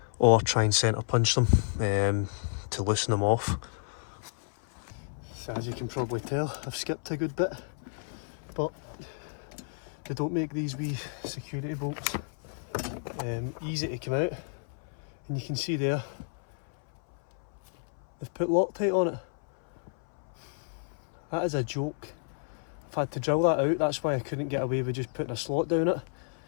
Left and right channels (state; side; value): silent; right; 57 dB below the other